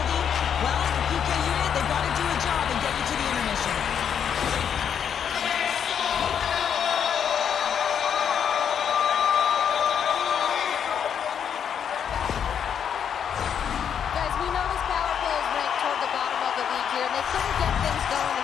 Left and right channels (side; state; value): right; quieter; 8.1 dB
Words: Well, the PK unit, they've got to do a job and get you to the intermission. Guys, we know this power play is ranked toward the bottom of the league here, and they couldn't get things going